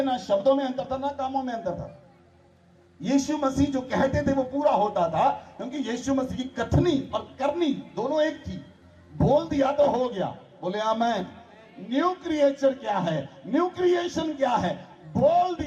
ना शब्दों में अंतर था ना कामों में अंतर था। यीशु मसीह जो कहते थे वो पूरा होता था, क्योंकि यीशु मसीह की कथनी और करनी दोनों एक थी। बोल दिया तो हो गया। बोले आमीन। न्यू क्रिएचर क्या है? न्यू क्रिएशन क्या है? बोल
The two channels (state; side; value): identical; both; correlation 1.00